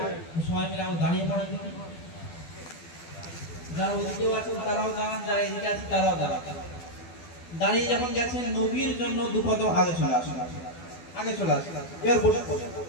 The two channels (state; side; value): late; right; 12 ms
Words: সবাই মিলে আমরা দাঁড়িয়ে পড়েন দেখি। যারা ওদিকেও আছেন তারাও দাঁড়ান, যারা এদিকে আছেন তারাও দাঁড়ান। দাঁড়িয়ে যখন গেছেন নবীর জন্য দুপদ আগে চলে আসুন, আগে চলে আসুন। এবার বসে পড়ুন,